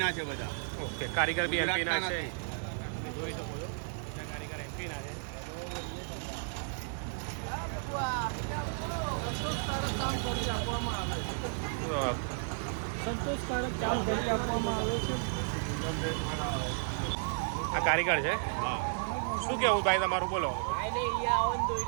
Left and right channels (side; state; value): left; silent; 56 dB below the other